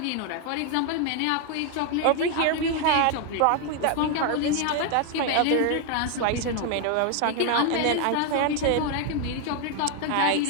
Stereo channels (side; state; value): both; different; correlation 0.00